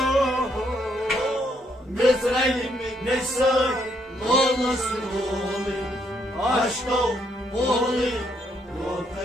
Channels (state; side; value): normal; both; correlation 0.73